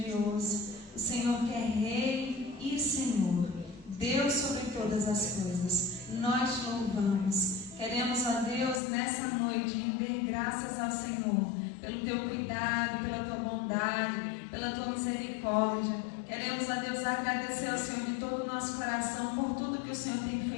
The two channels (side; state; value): right; drops out; at 8.8 s